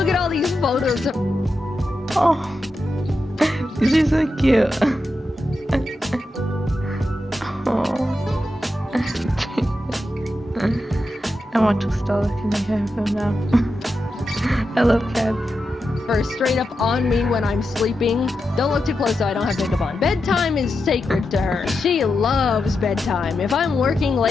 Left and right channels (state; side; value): normal; both; correlation 0.88